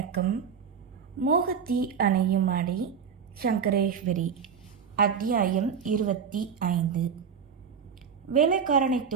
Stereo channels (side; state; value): left; quieter; 6.9 dB